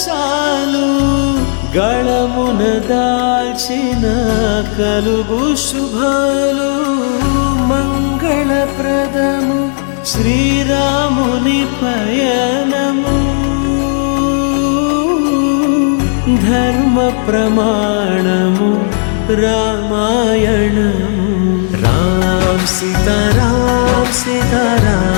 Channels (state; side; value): silent; right; digital silence